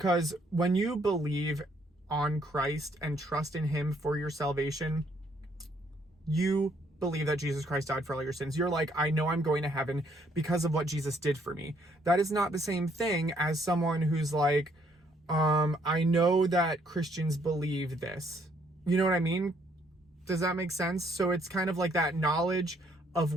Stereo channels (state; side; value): normal; both; correlation 0.68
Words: when you believe on Christ and trust in him for your salvation, you believe that Jesus Christ died for all your sins. You're like, I know I'm going to heaven because of what Jesus did for me. That is not the same thing as someone who's like, I know that Christians believe this. You know what I mean? Does that make sense? So it's kind of like that knowledge of